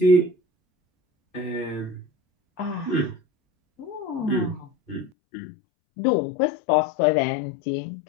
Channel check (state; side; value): drops out; right; at 5.1 s